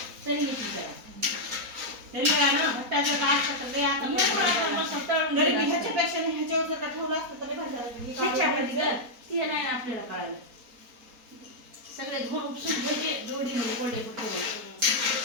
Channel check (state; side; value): late; left; 4.2 ms